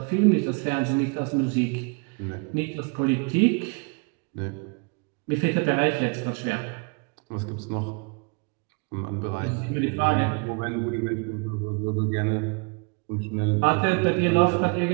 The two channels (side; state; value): left; quieter; 33.4 dB